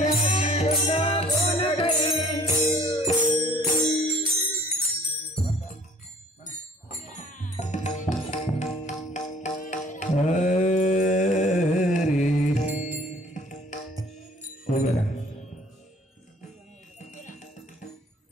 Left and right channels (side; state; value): both; normal; correlation 0.54